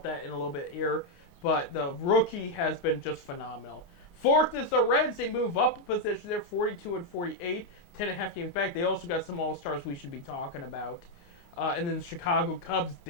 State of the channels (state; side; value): late; right; 29 ms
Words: that in a little bit here. But the rookie has been just phenomenal. Fourth is the Reds. They move up a position. They're 42-48, 10.5 games back. They also got some All-Stars we should be talking about. And then the Chicago Cubs